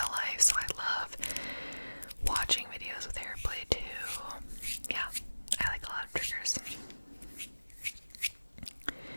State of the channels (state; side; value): inverted; both; correlation -1.00